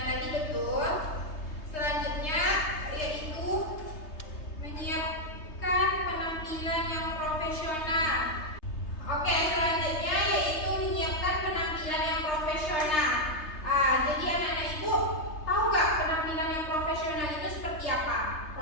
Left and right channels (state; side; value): late; right; 3.3 ms